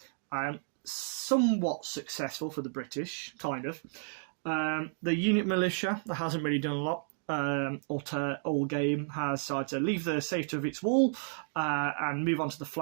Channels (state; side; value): silent; left; digital silence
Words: Somewhat successful for the British, kind of. The unit militia, that hasn't really done a lot. All game has decided to leave the safety of its wall and move on to the